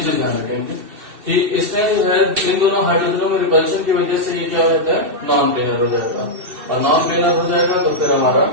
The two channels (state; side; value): late; left; 2.7 ms